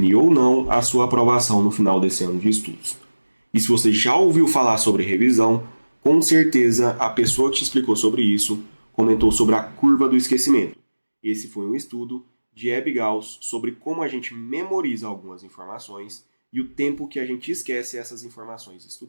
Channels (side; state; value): both; inverted; correlation -1.00